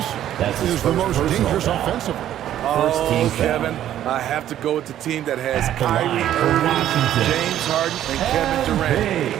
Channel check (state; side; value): quieter; left; 11.7 dB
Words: That's say his is the first most personal dangerous foul. offensively? First team Oh, foul. Kevin, I have to go with the team that has At the Kyrie line for Irving, Washington. James Harden, and Kevin